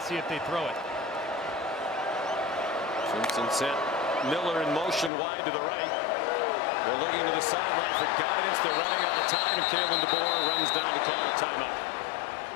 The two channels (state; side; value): drops out; right; at 5.1 s